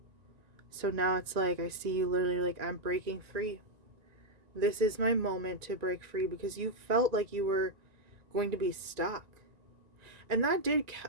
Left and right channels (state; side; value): late; left; 1.9 ms